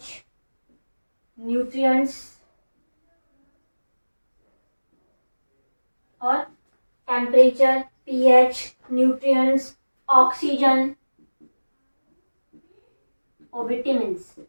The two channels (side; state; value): both; inverted; correlation -1.00